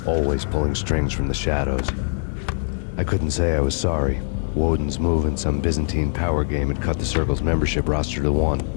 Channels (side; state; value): right; silent; digital silence